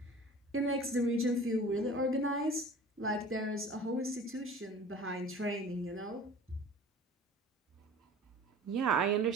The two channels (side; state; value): both; normal; correlation 0.43